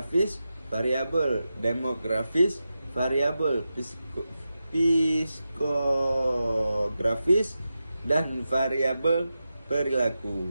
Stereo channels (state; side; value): inverted; both; correlation -0.91